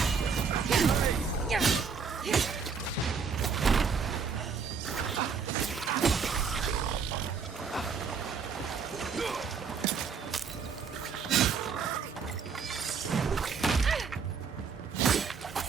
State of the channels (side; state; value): left; quieter; 5.9 dB